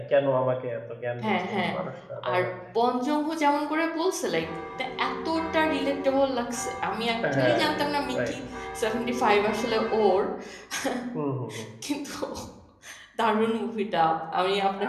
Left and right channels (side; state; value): both; identical; correlation 1.00